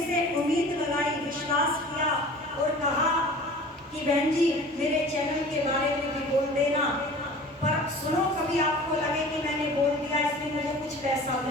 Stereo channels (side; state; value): both; normal; correlation 0.42